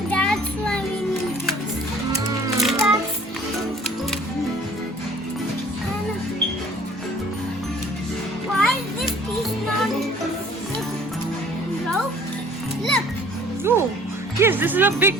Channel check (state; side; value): normal; both; correlation 0.52